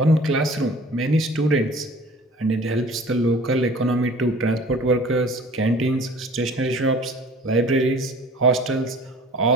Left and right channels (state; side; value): normal; both; correlation 0.46